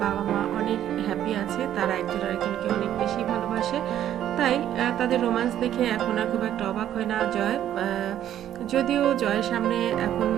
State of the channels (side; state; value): left; quieter; 11.2 dB